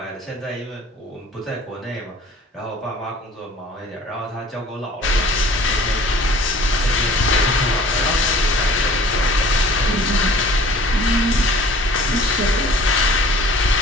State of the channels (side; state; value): both; normal; correlation 0.49